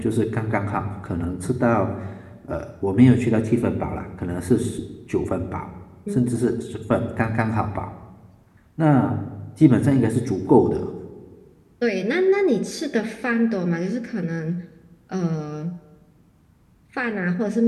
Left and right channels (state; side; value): identical; both; correlation 1.00